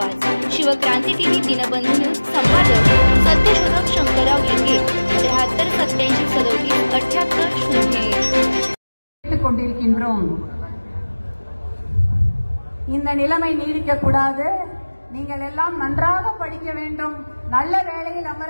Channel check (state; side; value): inverted; both; correlation -1.00